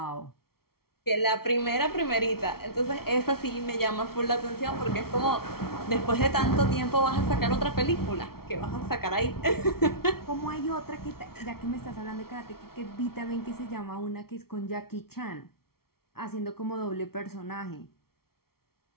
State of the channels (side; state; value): right; late; 0.94 ms